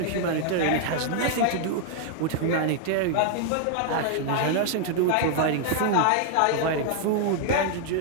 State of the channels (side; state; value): both; different; correlation 0.00